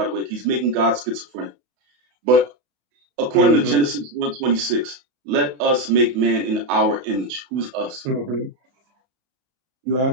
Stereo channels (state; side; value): late; left; 32 ms